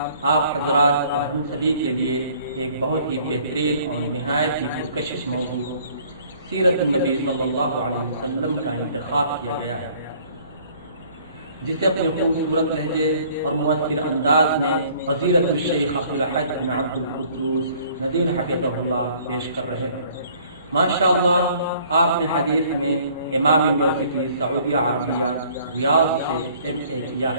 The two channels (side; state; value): both; inverted; correlation -0.57